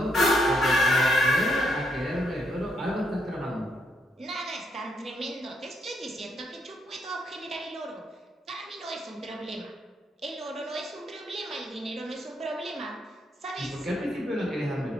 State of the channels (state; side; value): normal; both; correlation 0.76